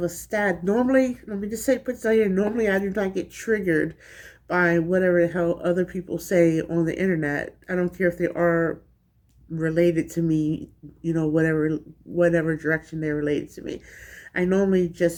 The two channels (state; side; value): identical; both; correlation 1.00